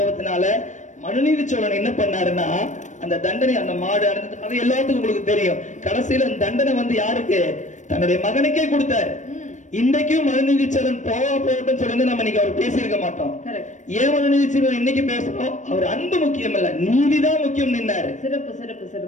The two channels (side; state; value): right; late; 0.35 ms